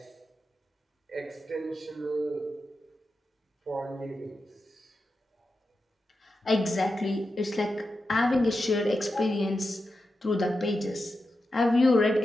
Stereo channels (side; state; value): both; normal; correlation 0.90